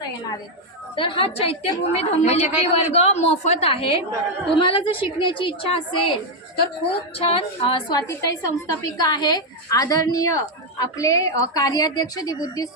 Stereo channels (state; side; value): normal; both; correlation 0.01